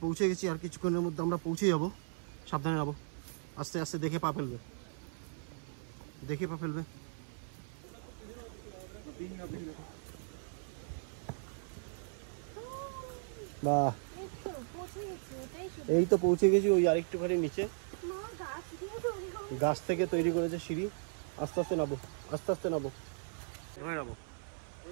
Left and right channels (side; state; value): left; silent; 53 dB below the other